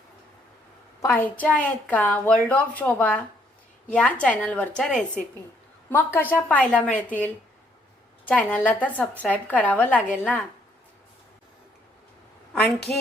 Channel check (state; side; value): normal; both; correlation 0.69